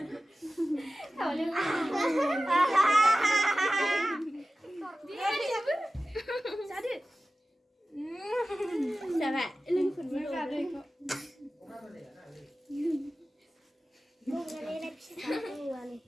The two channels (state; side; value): normal; both; correlation 0.96